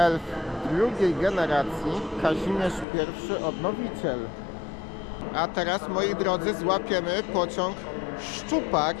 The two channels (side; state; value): right; drops out; at 2.9 s